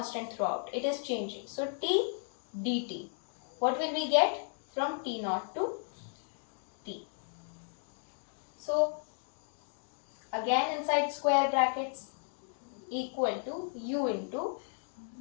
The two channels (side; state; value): right; silent; 55 dB below the other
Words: throughout. It is changing. So t dt. What will we get from t naught to t? So again inside square brackets equal to u into